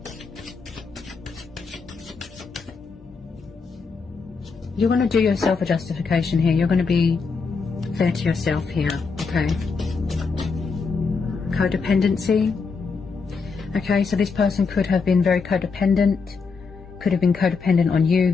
You're going to do yourself a justification here. You're going to be fair to yourself here, okay? Codependency. Okay, so this person could have been very codependent, could have been codependent on you,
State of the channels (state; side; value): quieter; right; 4.9 dB